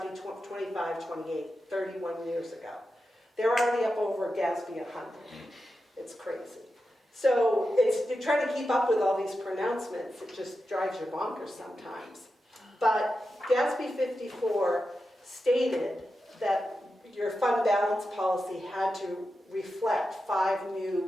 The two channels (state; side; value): normal; both; correlation 0.90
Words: 25, 28, 31 years ago. They're already up over GASB 100. It's crazy. So you're trying to keep up with all these pronouncements. It just drives you bonkers sometimes. But GASB 54 stated that your fund balance policy had to reflect 5